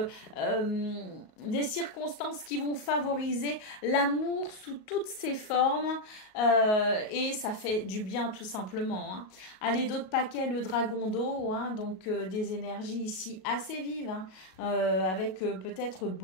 des circonstances qui vont favoriser l'amour sous toutes ses formes et ça fait du bien tout simplement. Hein. Allez, d'autres paquets, le dragon d'eau. Hein, donc des énergies ici assez vives, hein, avec peut-être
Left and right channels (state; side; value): late; right; 38 ms